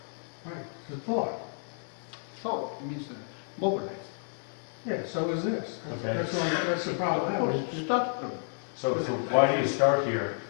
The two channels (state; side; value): silent; right; digital silence